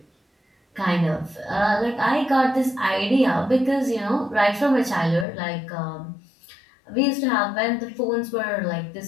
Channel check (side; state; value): right; drops out; at 5.2 s